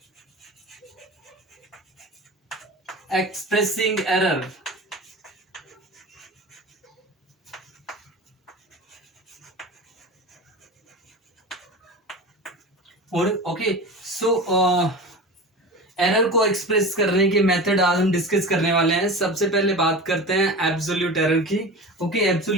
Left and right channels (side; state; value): both; normal; correlation 0.31